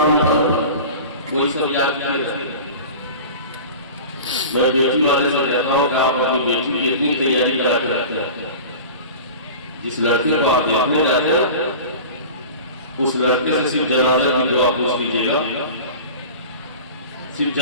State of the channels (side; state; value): both; inverted; correlation -0.36